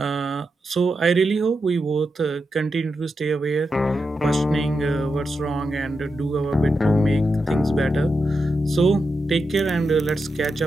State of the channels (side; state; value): both; normal; correlation 0.87